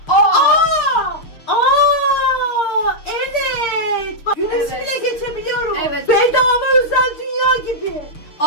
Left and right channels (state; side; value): late; right; 6.7 ms